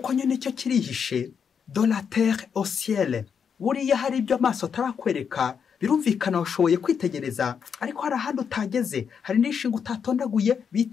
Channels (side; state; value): right; quieter; 6.9 dB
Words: nyine cyo kirihishe, de la terre au ciel. Buriya hari ibyo amaso atarakwereka, birumvikana washoboye kwitegereza, ariko hari ahandi utageze, hari n'ishinga utatondaguye